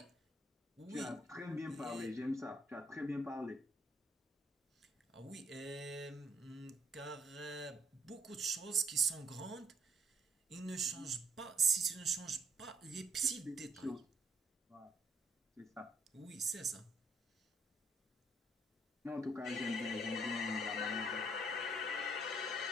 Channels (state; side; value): normal; both; correlation 0.69